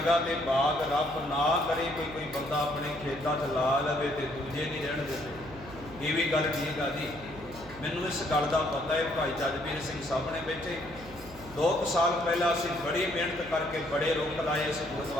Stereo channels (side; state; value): right; noise; hum, 18 dB below the sound